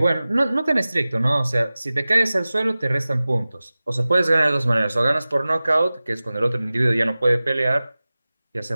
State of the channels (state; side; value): inverted; both; correlation -0.97